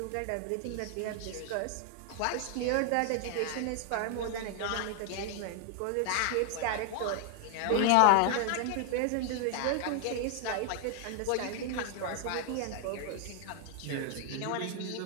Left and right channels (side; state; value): both; different; correlation 0.00